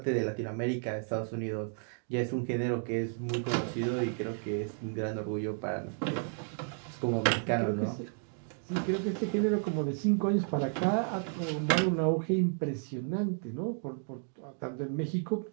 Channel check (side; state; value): left; silent; 56 dB below the other